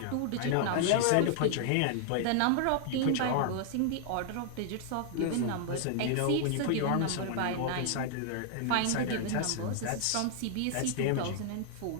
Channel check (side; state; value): both; different; correlation -0.01